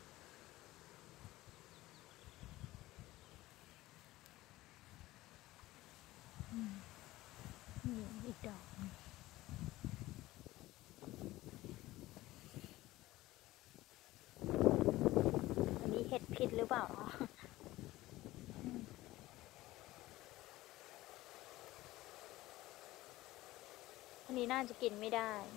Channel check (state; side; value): quieter; right; 17.5 dB